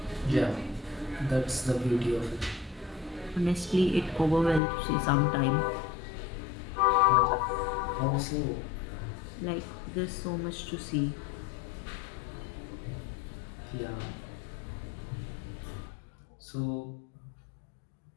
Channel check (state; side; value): drops out; right; at 4.6 s